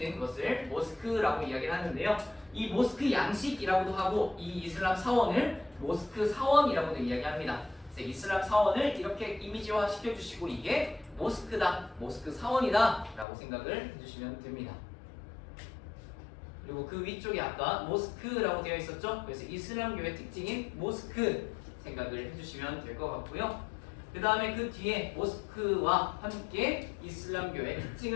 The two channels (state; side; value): drops out; right; at 13.2 s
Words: 것을 모스크라고 이야기를 하는데요. 이 모스크 양식이라고도 하고 이 이슬람 사원을 모스크 사원이라고도 이야기합니다. 그래서 이슬람 사원을 이렇게 이미지화 시켜주시고 이게 모스크다, 모스크 사원이다 라고 생각을 해주시면 됩니다. 그리고 그 위쪽에 아까 모스크라고 되어 있었죠. 그래서 이슬람교의 특징인 모스크 생각을 해주시면 될 것 같고요. 그 다음에 그 뒤에 모스크와 함께 이슬람교의